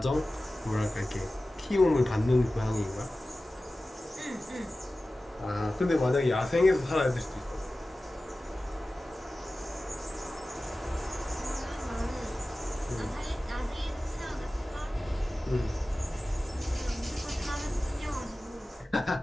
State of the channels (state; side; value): normal; both; correlation 0.96